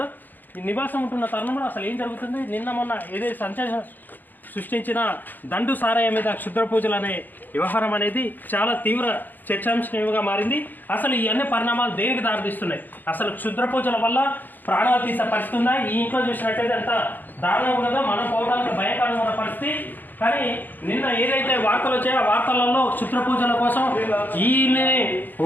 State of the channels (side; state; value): right; late; 0.088 ms